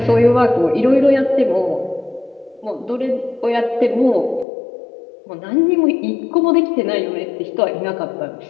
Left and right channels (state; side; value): drops out; right; at 4.5 s